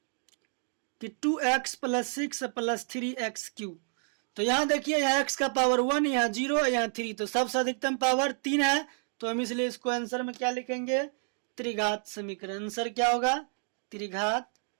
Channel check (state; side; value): silent; left; 58 dB below the other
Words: कि 2x प्लस 6 प्लस 3x³। तो यहाँ देखिए, यहाँ x का पावर 1, यहाँ 0, यहाँ 3, तो सबसे अधिकतम पावर 3 है, तो हम इसलिए इसको आंसर में क्या लिखेंगे? त्रिघात समीकरण। आंसर क्या होगा? त्रिघात